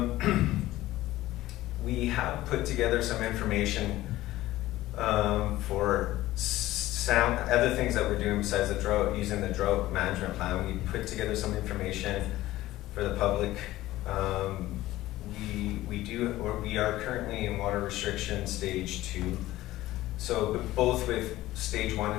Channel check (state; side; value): quieter; right; 16.2 dB